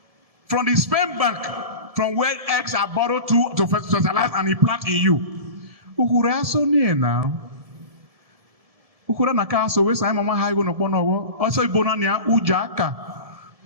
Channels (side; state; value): left; late; 1.7 ms